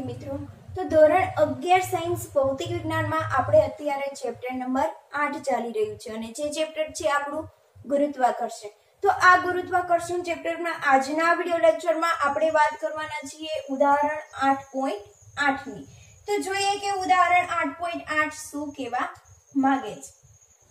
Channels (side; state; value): both; identical; correlation 1.00